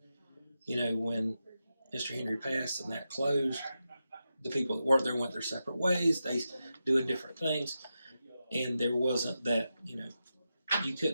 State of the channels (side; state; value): both; inverted; correlation -0.89